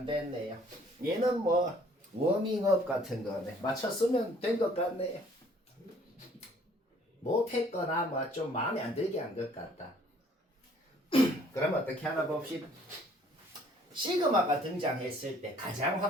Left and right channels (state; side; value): normal; both; correlation 0.58